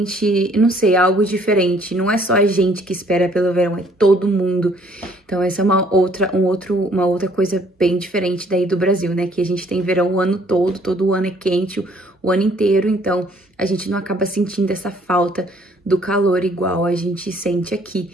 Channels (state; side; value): normal; both; correlation 0.62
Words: não sei, é algo diferente. Não é só a gente que espera pelo verão, é todo mundo. Então, essa é uma outra coisa bem diferente daí do Brasil, né? Que a gente tem verão o ano todo ano é quente, o ano inteiro, então a gente não acaba sentindo essa falta do calor igual a gente sente aqui,